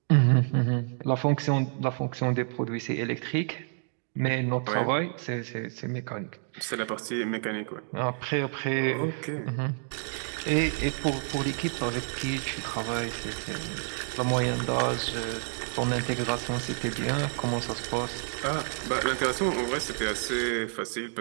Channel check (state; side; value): silent; left; 59 dB below the other